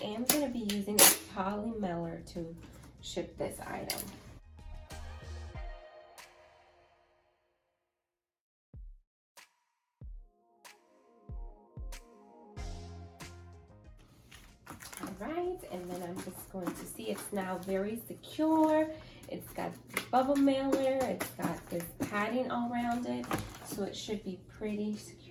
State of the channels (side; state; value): both; identical; correlation 1.00